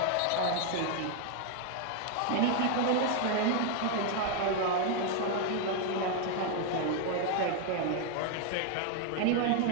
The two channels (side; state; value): both; different; correlation 0.00